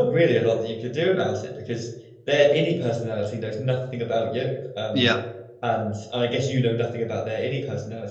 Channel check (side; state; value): both; identical; correlation 1.00